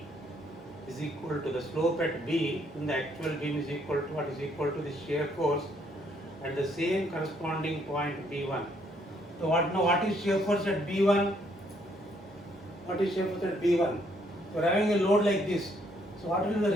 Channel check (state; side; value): normal; both; correlation 0.69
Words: is equal to the slope at B in the actual beam is equal to what? Is equal to the shear force at the same corresponding point B1. So what is shear force at B1? What is shear force at B1? So we are having a load like this. So what will be the